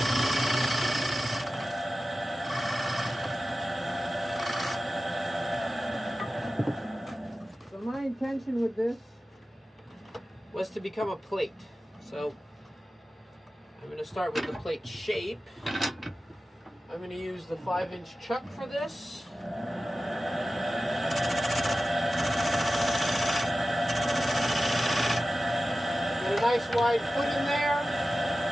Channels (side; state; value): both; normal; correlation 0.95